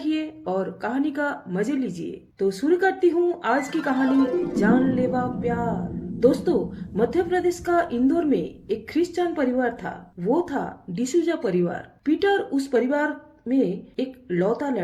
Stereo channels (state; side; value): identical; both; correlation 1.00